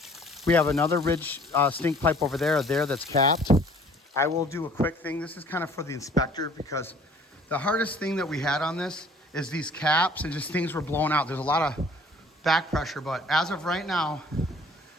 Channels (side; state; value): both; normal; correlation 0.53